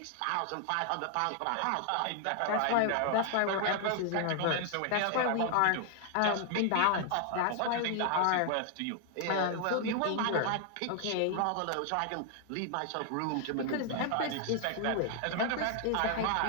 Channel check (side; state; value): both; different; correlation 0.00